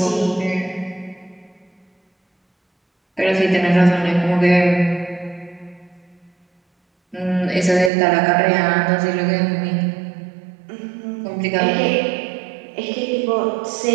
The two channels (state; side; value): drops out; left; at 7.9 s